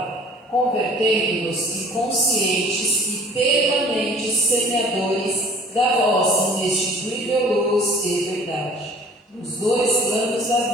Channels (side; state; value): both; normal; correlation 0.50